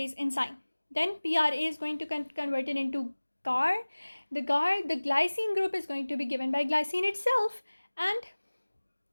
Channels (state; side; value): inverted; both; correlation -1.00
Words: enzyme. Then PRA is going to convert it into GAR. The glycine group is going to be given by glycine itself. And